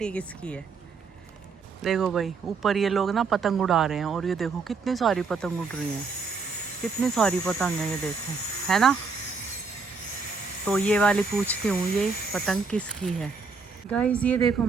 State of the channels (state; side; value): quieter; left; 4.7 dB